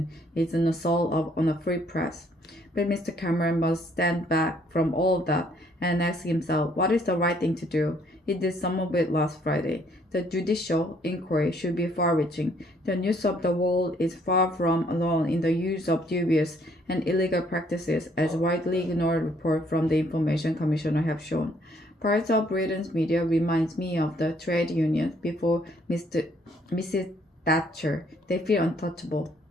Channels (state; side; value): normal; both; correlation 0.65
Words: is an assault on a free press. But Mr. Cameron must stand back from all of that and ask himself what is the right thing to do. He did some of it last Friday. The judicial inquiry should be far-reaching. The news of the world is far from alone in the use of dubious and illegal practices, as widely ignored reports from the Information Commissioner have shown. Parts of Britain's media reminds me of the trade unions before Mrs. Thatcher. They feel untouchable.